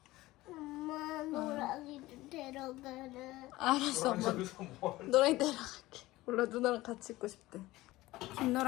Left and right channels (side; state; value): right; quieter; 18.2 dB